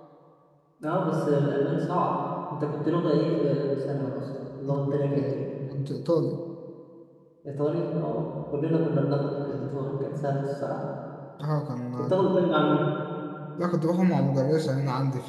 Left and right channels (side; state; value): both; identical; correlation 1.00